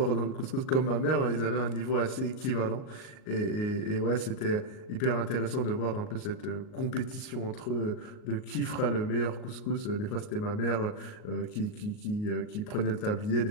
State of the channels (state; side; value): late; right; 38 ms